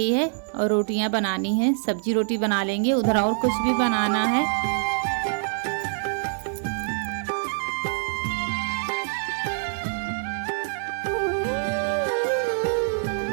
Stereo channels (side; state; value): left; silent; digital silence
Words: है और रोटियां बनानी है। सब्जी रोटी बना लेंगे, उधर और कुछ भी बनाना है।